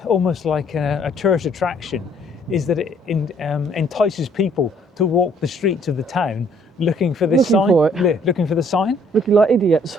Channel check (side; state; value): both; normal; correlation 0.62